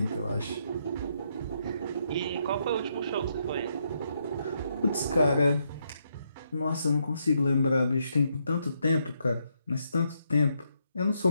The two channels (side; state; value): both; inverted; correlation -0.77